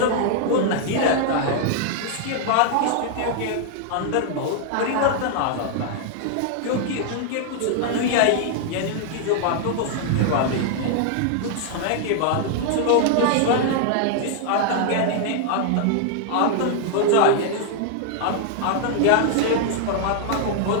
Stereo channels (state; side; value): different; both; correlation -0.01